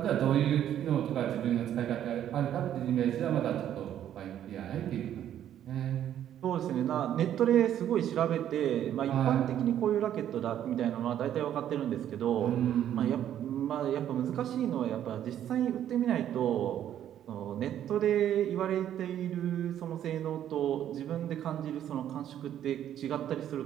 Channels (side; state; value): left; quieter; 10.8 dB